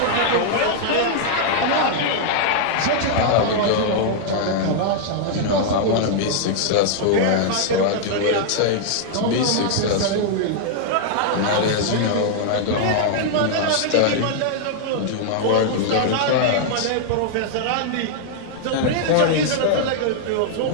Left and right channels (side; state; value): both; different; correlation -0.01